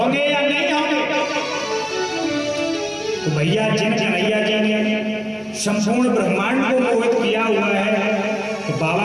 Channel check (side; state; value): both; identical; correlation 1.00